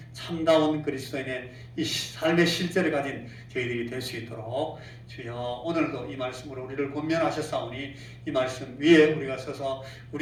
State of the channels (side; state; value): both; identical; correlation 1.00